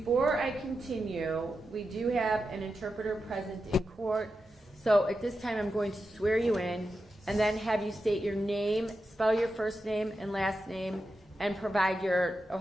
I continue, we do have an interpreter present in court, so at this time I'm going to swear you in and then have you state your name, spell your first name and last name, and provide your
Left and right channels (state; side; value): normal; both; correlation 0.89